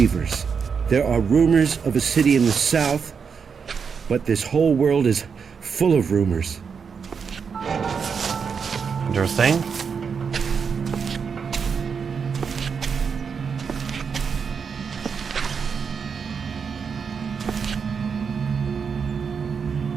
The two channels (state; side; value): quieter; left; 6.1 dB